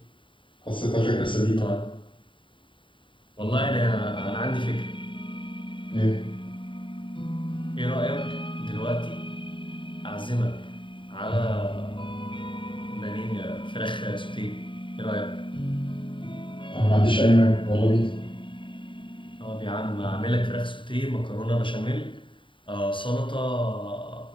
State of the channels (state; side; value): late; right; 0.24 ms